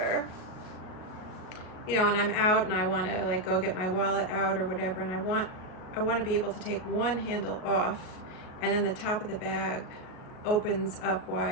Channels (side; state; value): right; late; 37 ms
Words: you know, and I'm out and I want to like go get my wallet out or whatever, and I want to be able to take one handle off, and then the top of the bag opens up